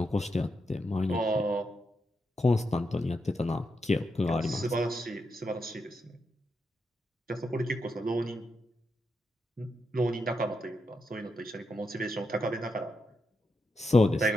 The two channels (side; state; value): both; normal; correlation 0.84